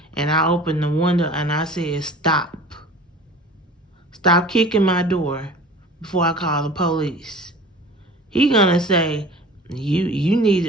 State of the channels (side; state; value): both; normal; correlation 0.42